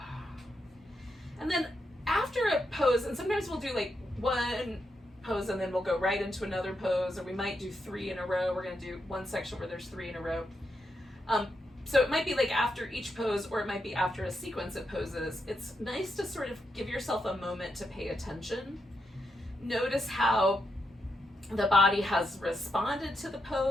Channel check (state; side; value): normal; both; correlation 0.83